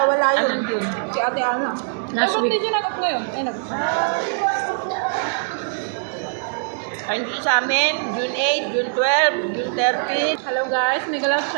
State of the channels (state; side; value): silent; left; digital silence